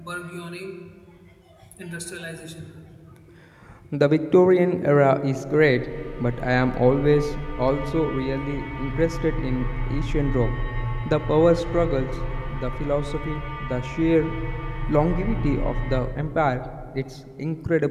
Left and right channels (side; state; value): both; identical; correlation 1.00